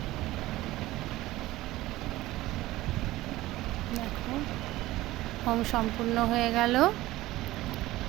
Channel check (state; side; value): quieter; left; 17.2 dB